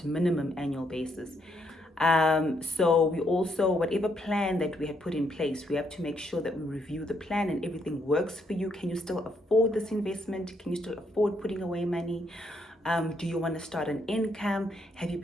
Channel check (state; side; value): normal; both; correlation 0.75